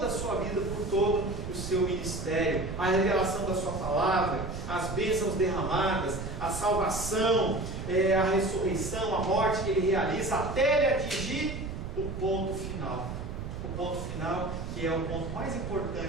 a sua vida, por todo o seu ministério. A revelação da sua palavra, as bênçãos derramadas, a salvação, a ressurreição, a morte que ele realiza, até ele atingir o ponto final. O ponto final, que é o ponto mais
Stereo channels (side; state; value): right; noise; rumble, 6 dB below the sound